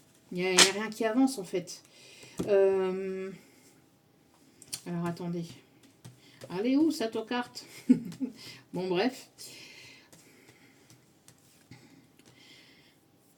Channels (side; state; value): both; identical; correlation 1.00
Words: il n'y a rien qui avance en fait. Alors attendez. Allez où ça, ta carte? Bon, bref.